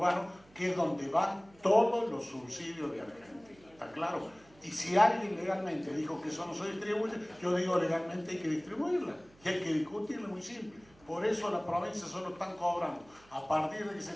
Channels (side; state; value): right; noise; hum, 27 dB below the sound